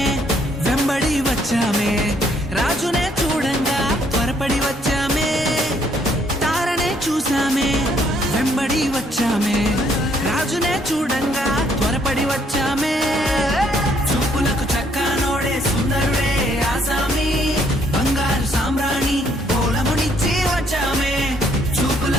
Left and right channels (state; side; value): normal; both; correlation 0.67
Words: వెంబడి వచ్చామే, రాజునే చూడంగా త్వరపడి వచ్చామే. తారనే చూసామే వెంబడి వచ్చామే, రాజునే చూడంగా త్వరపడి వచ్చామే. చూపులకు చక్కానోడే సుందరుడే ఆసామి, బంగారు సామ్రాణి గోళమునిచ్చి వచ్చామే.